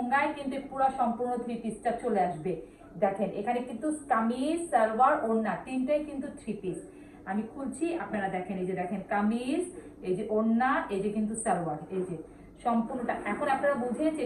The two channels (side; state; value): both; identical; correlation 1.00